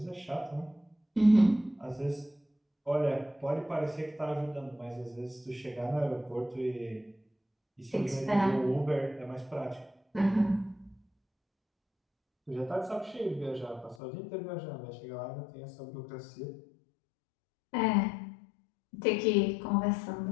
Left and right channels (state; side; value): drops out; right; at 14.0 s